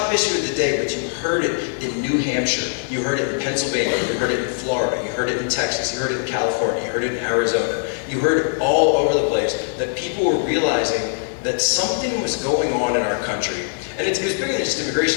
issue of the day, but you heard it in New Hampshire, you heard it in Pennsylvania, you heard it in Florida, you heard it in Texas, you heard it in California, you heard it in Arizona. You heard it all over the place, that people were realizing that something was going on in our country. And it was bigger than just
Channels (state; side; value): silent; right; digital silence